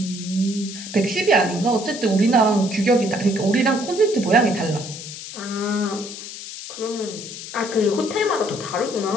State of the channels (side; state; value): left; noise; hiss, 11 dB below the sound